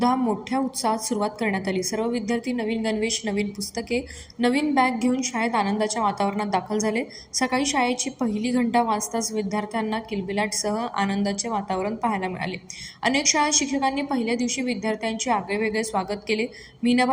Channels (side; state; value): both; identical; correlation 1.00